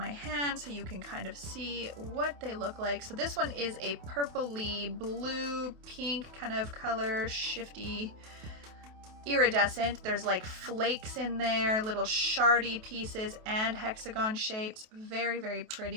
hand so you can kind of see what they look like. So this one is a purpley blue, pink kind of color, shifty, iridescent. There's like flakes in there, little shardy pieces and hexagon shapes. Very, very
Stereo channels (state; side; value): late; left; 28 ms